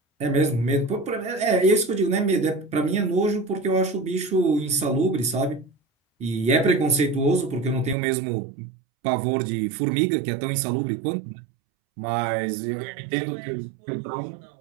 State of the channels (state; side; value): drops out; left; at 8.0 s